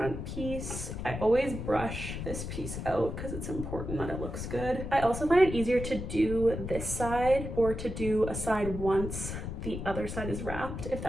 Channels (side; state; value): left; noise; rumble, 6 dB below the sound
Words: piece. I always brush this piece out because it's important that it looks good. I also find it easier to do this side or to do a side once the other side is wrapped, if